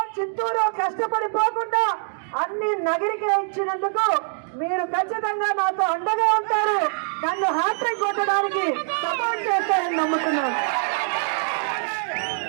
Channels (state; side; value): silent; left; 63 dB below the other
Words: చిత్తూరు కష్టపడిపోకుండా అన్ని నగరికి ఇచ్చినందుకు మీరు ఖచ్చితంగా నాతో అండగా ఉంటారు, నన్ను హ్యాట్రిక్ కొట్టడానికి సపోర్ట్ చేస్తారని నమ్ముతున్నాను.